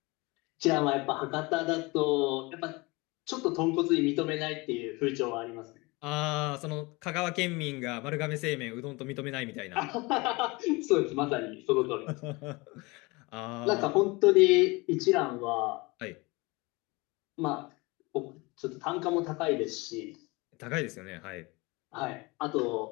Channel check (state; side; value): quieter; right; 24.9 dB